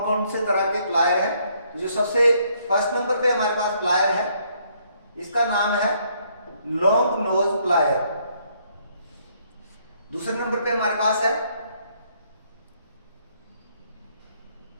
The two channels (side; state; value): both; inverted; correlation -0.69